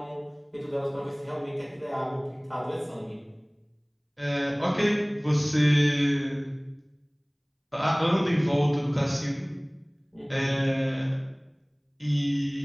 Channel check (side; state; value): both; identical; correlation 1.00